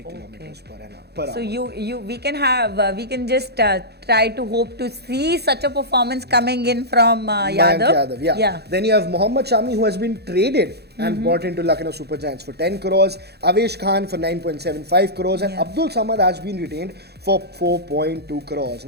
kilometers per hour. So we can just try to hope to see such a performance coming in from Yadav. Yeah. Then you have Mohammad Shami, who has been traded and bought into Lucknow Super Giants for 10 crores, Avesh Khan for 9.75 crores, and Abdul Samad has been retained for 4.2 crores.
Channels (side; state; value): left; late; 0.48 ms